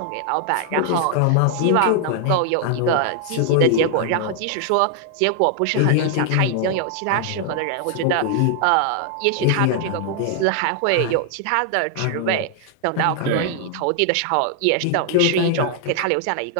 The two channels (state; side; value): different; both; correlation 0.00